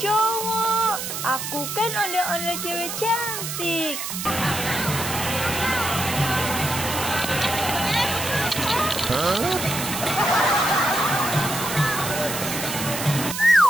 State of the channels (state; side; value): noise; right; hiss, 5 dB below the sound